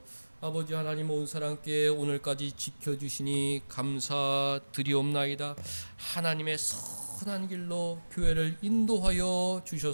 아버지 하나님, 온 사람께 오늘까지 지켜주시니 감사드리옵나이다. 하나님의 선한 길로 교회를 인도하여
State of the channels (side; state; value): both; inverted; correlation -1.00